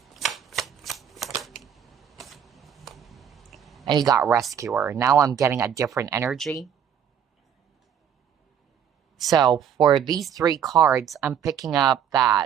And you got rescuer. Now I'm getting a different energy. So for these three cards, I'm picking up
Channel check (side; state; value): left; quieter; 8.6 dB